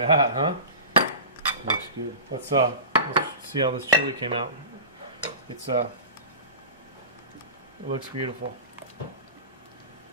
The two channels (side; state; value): both; inverted; correlation -0.30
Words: that, huh? Looks good. Let's see how this chili came out. It looks beautiful.